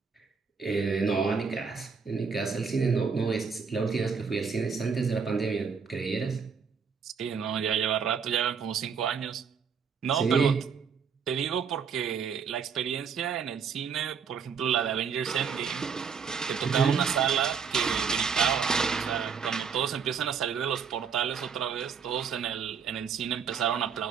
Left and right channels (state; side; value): quieter; left; 6.2 dB